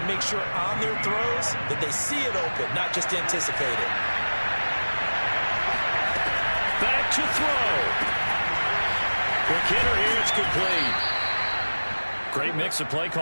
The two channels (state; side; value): inverted; both; correlation -1.00